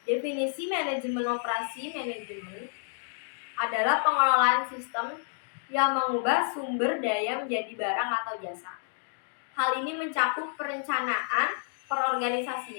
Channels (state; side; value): silent; right; digital silence